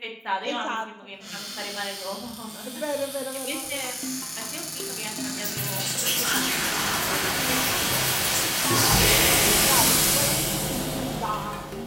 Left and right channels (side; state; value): both; identical; correlation 1.00